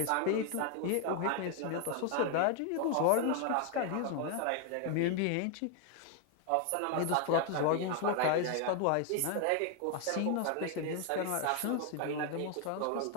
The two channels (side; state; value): both; different; correlation 0.00